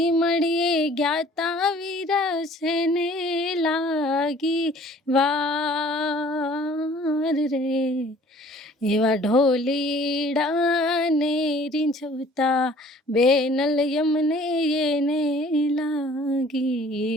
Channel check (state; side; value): normal; both; correlation 0.52